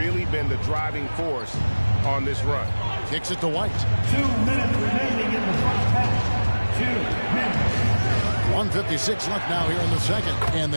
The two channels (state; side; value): inverted; both; correlation -1.00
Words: been the driving force on this run. Kicks it to White. 2 minutes remaining in the first half. 2 minutes. 1:56 left now here in the second. And